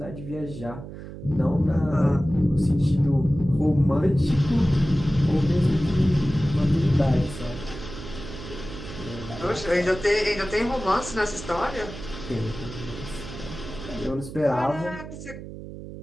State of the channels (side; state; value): right; noise; hum, 12 dB below the sound